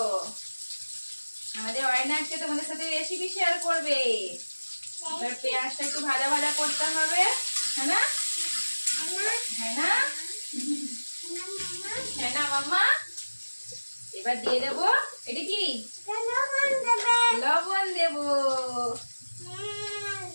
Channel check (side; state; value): both; inverted; correlation -1.00